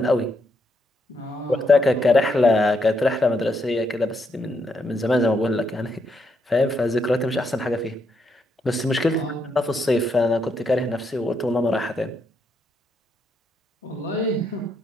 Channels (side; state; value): both; normal; correlation 0.78